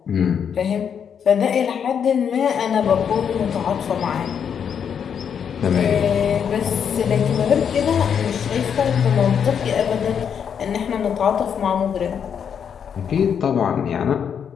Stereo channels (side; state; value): right; quieter; 7.6 dB